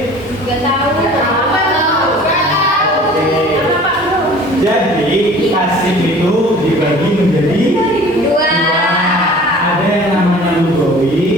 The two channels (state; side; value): normal; both; correlation 0.46